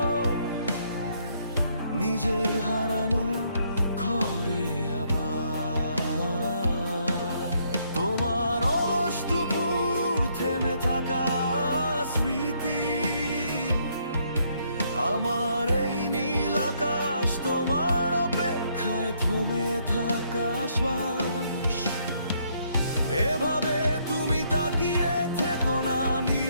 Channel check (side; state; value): both; inverted; correlation -0.71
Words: নিজের হারানো ঘরে আবার। তোমার অলস দুপুর থেমে থাকা স্মৃতি, আমার এই নীল আকাশ তোমার অপেক্ষায় থমে থাকা শ্বাস। এভাবে তুমি তাকিয়ে থেকো না